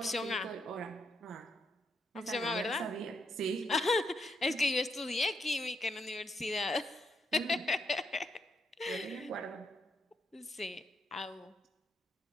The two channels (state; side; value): normal; both; correlation 0.79